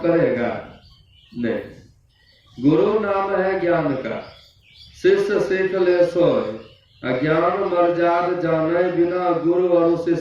नहीं। गुरु नाम है ज्ञान का, शिष्य सीख ले सोय, अज्ञान मर्याद जाने बिना गुरु और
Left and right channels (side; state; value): both; identical; correlation 1.00